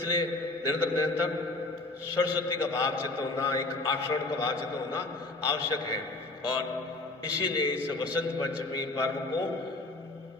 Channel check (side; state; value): right; quieter; 3.0 dB